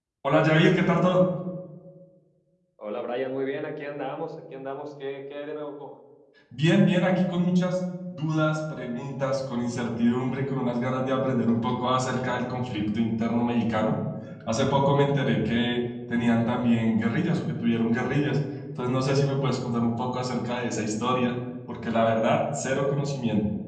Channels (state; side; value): identical; both; correlation 1.00